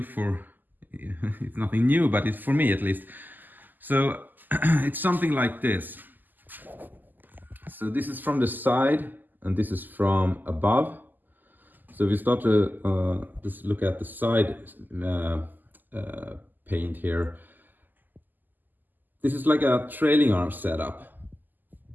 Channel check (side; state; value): left; late; 0.087 ms